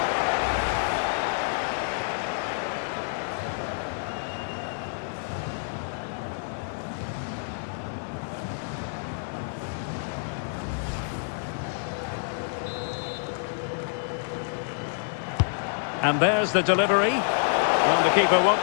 And there's the delivery. Well, the keeper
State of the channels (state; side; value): silent; right; 60 dB below the other